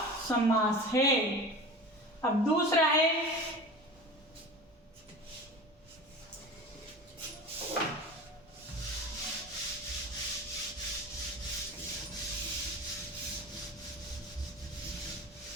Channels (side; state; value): both; normal; correlation 0.34